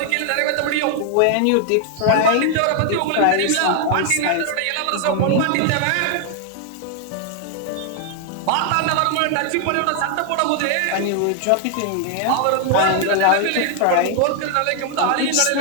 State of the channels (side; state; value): both; different; correlation 0.00